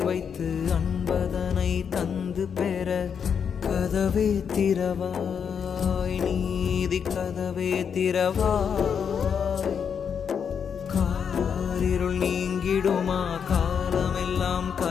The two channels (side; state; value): right; quieter; 7.1 dB